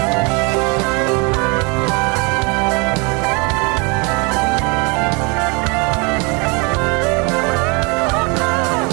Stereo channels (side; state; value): left; quieter; 29.6 dB